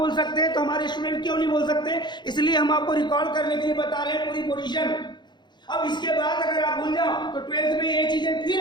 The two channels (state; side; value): late; right; 0.21 ms